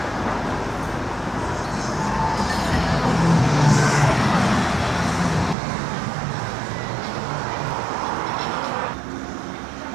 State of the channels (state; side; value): drops out; left; at 5.6 s